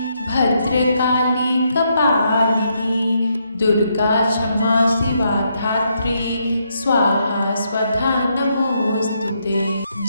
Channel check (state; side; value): inverted; both; correlation -0.77